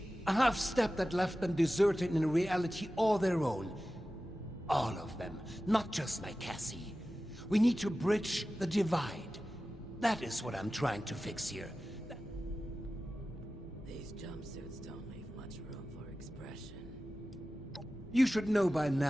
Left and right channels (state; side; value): normal; both; correlation 0.95